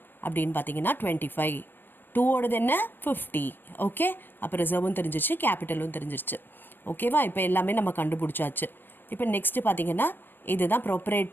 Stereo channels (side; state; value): right; late; 0.095 ms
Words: அப்படின்னு பார்த்தீங்கன்னா 25, 2ஓடது என்ன 50. ஓகே, அப்போ ரிசர்வும் தெரிஞ்சிச்சு, கேபிட்டலும் தெரிஞ்சிருச்சு. ஓகேவா? இப்போ எல்லாமே நம்ம கண்டுபிடிச்சாச்சு. இப்போ நெக்ஸ்ட்டு பார்த்தீங்கன்னா இதுதான்